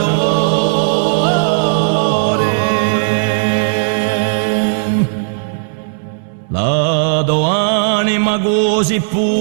la do anima così pura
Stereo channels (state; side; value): silent; left; digital silence